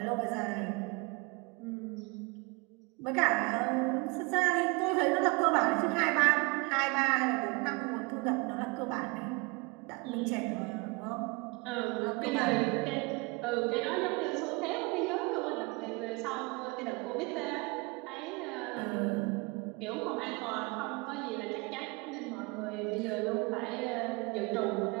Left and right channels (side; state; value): left; quieter; 28.2 dB